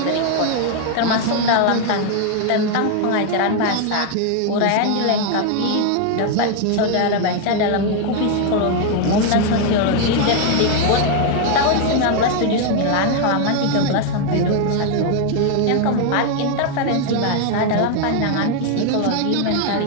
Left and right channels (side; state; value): both; different; correlation 0.00